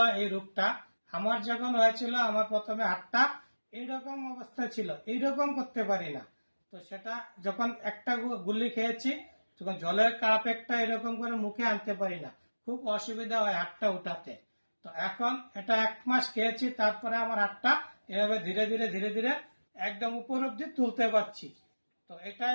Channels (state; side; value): inverted; both; correlation -1.00